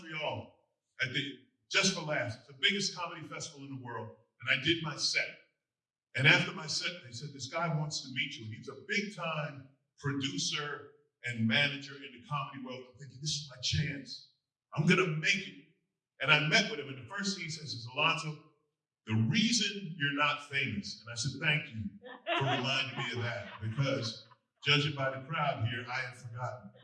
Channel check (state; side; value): identical; both; correlation 1.00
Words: at the Just for Laughs. It's the biggest comedy festival in the world, and I did my set. And after my set, they said, this guy wants to meet you, and he's a big-time producer and manager in the comedy world. I'm thinking, this is my chance. I'm gonna make it. And I met with him, and the first thing he says is, Alonzo, the reason you're not famous, and I said, thank you for reminding me of that, because judging by the crowd here, I had forgotten.